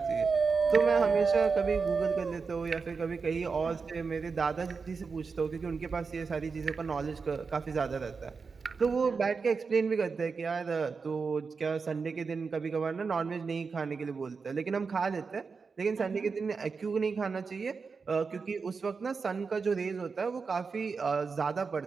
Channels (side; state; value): left; quieter; 5.0 dB